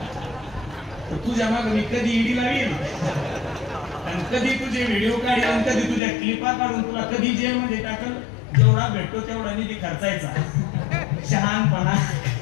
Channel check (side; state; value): right; drops out; at 6.0 s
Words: तर तुझ्या मागे मी कधी ईडी लावील, आणि कधी तुझे व्हिडिओ काढील, आणि कधी तुझ्या क्लिपा काढून तुला कधी जेलमध्ये टाकल. जेवढा भेटतो तेवढा निधी खर्चायचा. शहाणपणा